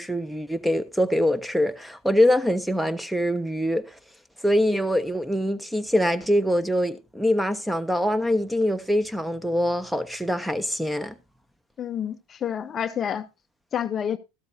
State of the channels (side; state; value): both; normal; correlation 0.90